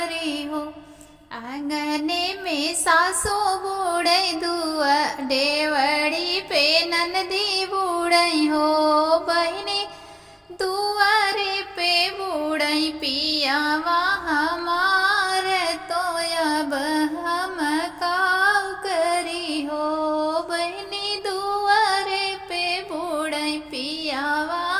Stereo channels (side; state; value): both; identical; correlation 1.00